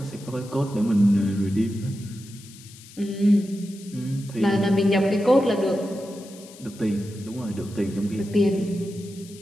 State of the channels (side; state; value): left; noise; hiss, 20 dB below the sound